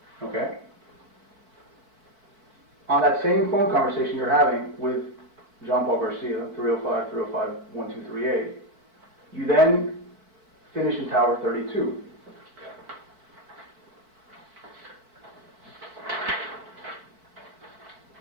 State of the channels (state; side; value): late; left; 4.5 ms